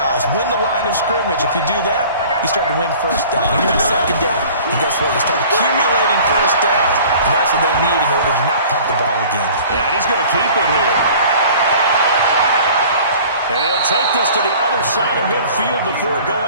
Win the line of scrimmage. If you do that, you start to win first down. You win second down. And guess what? You start accumulating first downs. And that's what they need in order to not punt the ball again. Yeah, and he's going to keep it here. And he'll take this to the other side of midfield before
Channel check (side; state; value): both; inverted; correlation -0.47